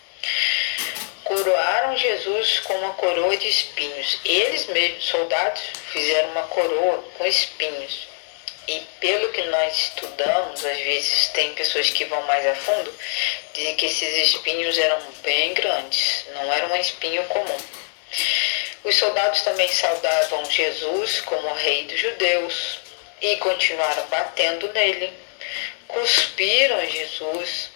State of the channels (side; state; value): right; silent; 64 dB below the other